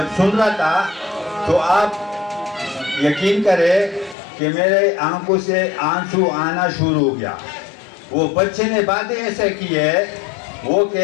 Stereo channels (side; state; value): right; drops out; at 4.2 s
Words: سن رہا تھا تو آپ یقین کرے کہ میرے آنکھوں سے آنسو آنا شروع ہو گیا. وہ بچے نے باتیں ایسے کی ہے، وہ